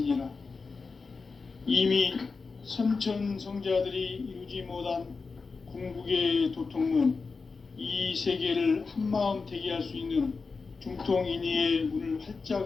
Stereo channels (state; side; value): quieter; right; 4.5 dB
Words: 이미 선천성자들이 이루지 못한 궁극의 도통문, 이 세계를 한마음 되게 할 수 있는 중통인의의 문을